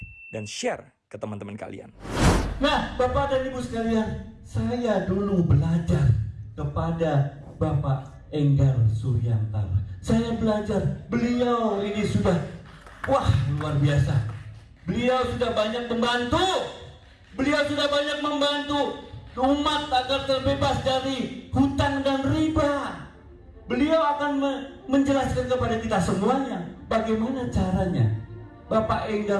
dan share ke teman-teman kalian. Nah, Bapak dan Ibu sekalian, saya dulu belajar kepada Bapak Enggar Suryantara. Saya belajar, beliau ini sudah, wah luar biasa. Beliau sudah banyak membantu. Beliau sudah banyak membantu umat agar terbebas dari hutang dan riba. Beliau akan menjelaskan kepada kita semuanya bagaimana caranya. Bapak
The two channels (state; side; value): identical; both; correlation 1.00